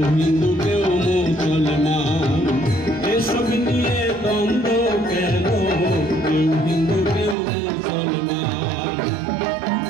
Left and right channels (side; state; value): left; drops out; at 7.4 s